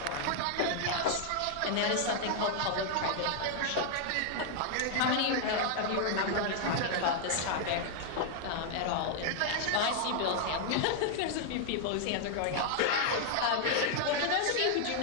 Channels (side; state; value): both; different; correlation 0.00